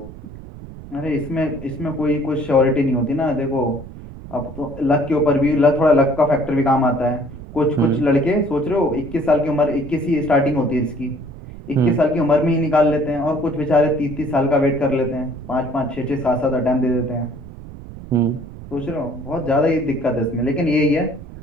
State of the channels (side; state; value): right; noise; rumble, 14 dB below the sound